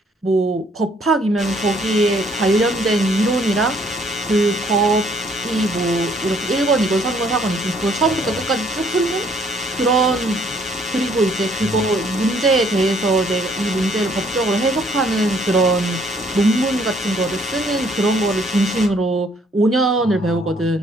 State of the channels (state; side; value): normal; both; correlation 0.64